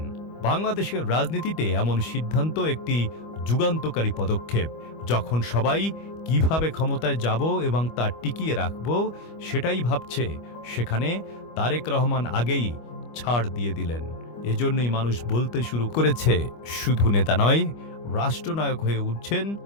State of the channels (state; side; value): late; right; 25 ms